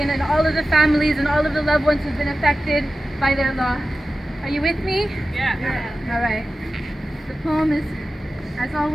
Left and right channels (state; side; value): normal; both; correlation 0.94